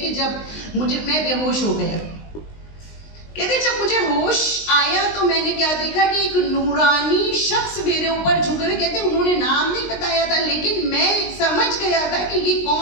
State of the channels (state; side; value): late; right; 19 ms